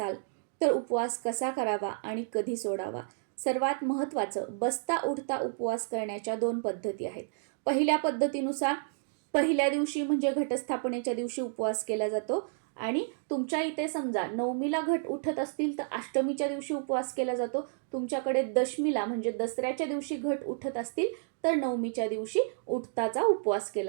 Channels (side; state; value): left; silent; digital silence